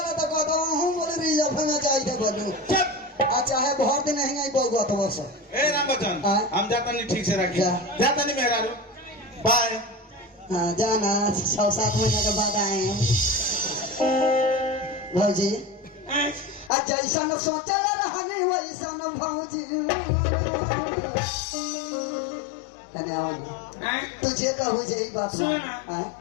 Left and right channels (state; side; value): drops out; right; at 16.7 s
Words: तो कहता हूँ बोले रिजर्व में चाहिए बोलूं चुप अच्छा है बहुत दिन नहीं आई बहुआ तो बस ए राम बच्चन हाँ। हम जाता नहीं ठीक से राखी जा। जाता नहीं मेहरारू बाय हाँ जाना 6-7 महीने के बाद आए हैं भौजी हैं? जैसा न सोचा रहने वैसा न भौजी कने आओ ना हैं? तुझे कहू जे ई बात सुनो हाँ ना